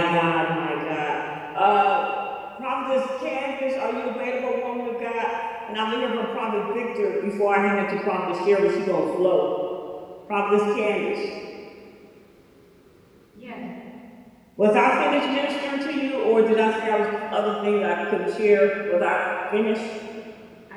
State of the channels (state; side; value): identical; both; correlation 1.00